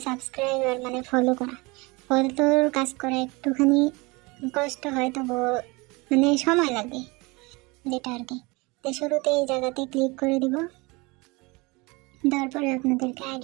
সাবস্ক্রাইবার মানে ফলো করা, ফলোর কাজ করা একটুখানি কষ্ট হয়, তবু মানে সময় লাগে যেটা আর কি। তো শুরুতে এই জায়গাতে ক্লিক করে দিব, তারপরে আপনাদেরকে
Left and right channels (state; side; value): quieter; left; 25.4 dB